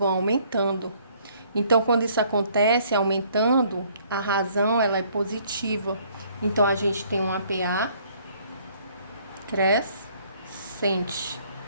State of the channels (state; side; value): inverted; both; correlation -0.62